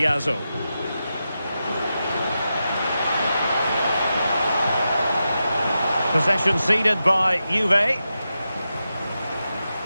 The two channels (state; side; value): inverted; both; correlation -0.90